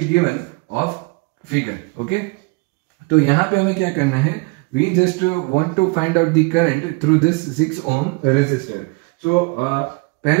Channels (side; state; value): left; quieter; 28.5 dB